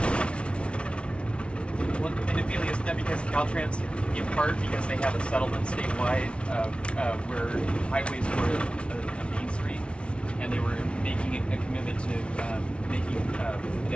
Well, and Ophelia, is that because Caltrans, in part because they have a settlement statewide where highways were a main street, and they were making a commitment to making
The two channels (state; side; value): late; right; 0.059 ms